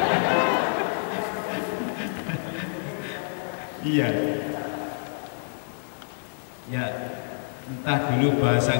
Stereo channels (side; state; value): right; silent; 60 dB below the other